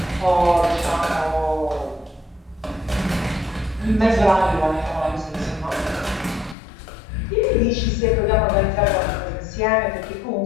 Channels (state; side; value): drops out; right; at 6.6 s